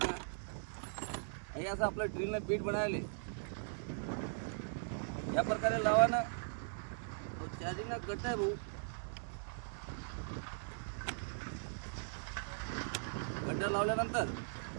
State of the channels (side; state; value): left; silent; digital silence